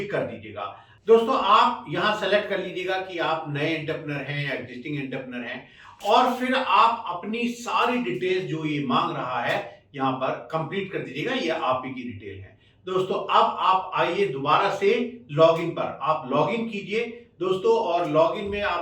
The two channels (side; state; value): both; identical; correlation 1.00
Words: कर दीजिएगा। दोस्तों, आप यहां सेलेक्ट कर लीजिएगा कि आप नए एंटरप्रेन्योर हैं या एग्जिस्टिंग एंटरप्रेन्योर हैं, और फिर आप अपनी सारी डिटेल्स जो ये मांग रहा है यहां पर कंप्लीट कर दीजिएगा। ये आप ही की डिटेल है। दोस्तों, अब आप आइए दोबारा से लॉगिन पर, आप लॉगिन कीजिए दोस्तों, और लॉगिन में